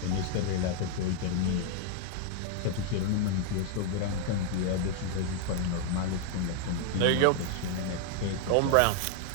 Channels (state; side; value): different; both; correlation 0.00